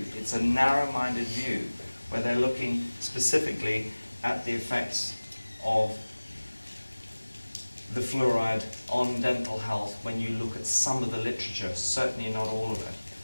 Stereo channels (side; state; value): both; inverted; correlation -1.00